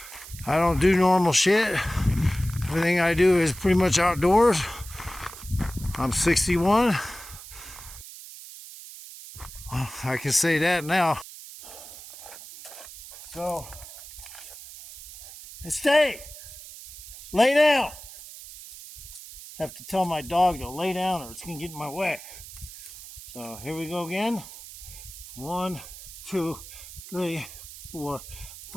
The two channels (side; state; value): right; noise; hiss, 15 dB below the sound